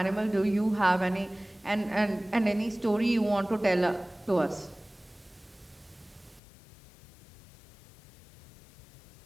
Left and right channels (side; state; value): right; drops out; at 6.4 s